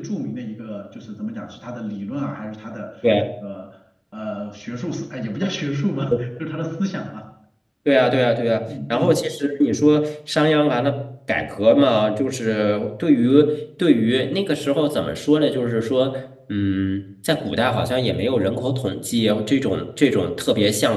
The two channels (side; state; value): both; identical; correlation 1.00